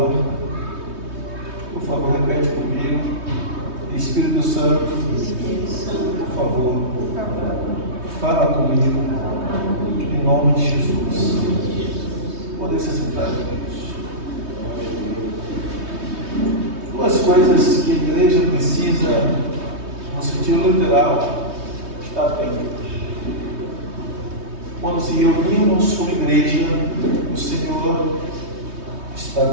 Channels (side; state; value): left; late; 3.2 ms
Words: Por favor, repete comigo. Espírito Santo, por favor, fala comigo, em nome de Jesus. Poder se sentar, Deus. Duas coisas que a igreja precisa, no sentido literal, estar atenta. Quando se reunimos como igreja, o Senhor está